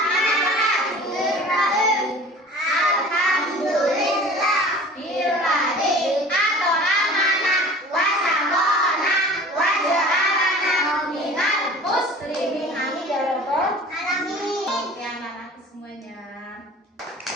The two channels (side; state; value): both; normal; correlation 0.43